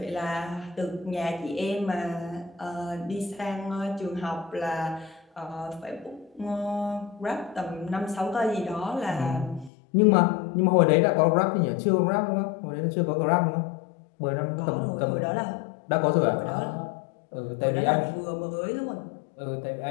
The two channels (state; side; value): drops out; right; at 9.7 s